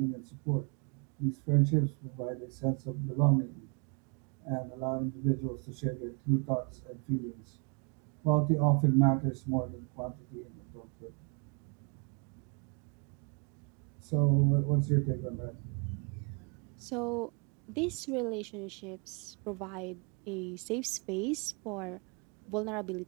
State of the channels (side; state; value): left; quieter; 35.8 dB